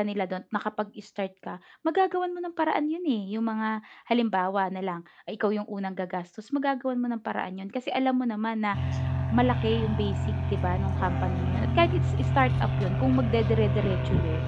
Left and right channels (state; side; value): identical; both; correlation 1.00